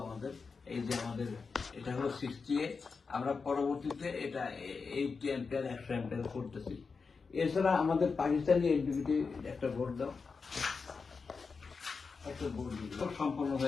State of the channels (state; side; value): quieter; right; 4.9 dB